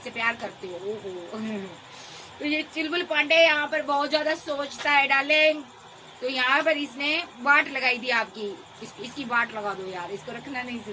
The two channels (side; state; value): both; identical; correlation 1.00